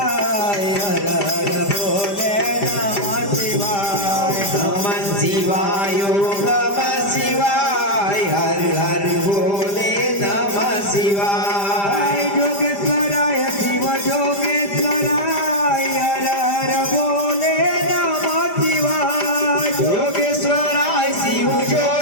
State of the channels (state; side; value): late; right; 5.0 ms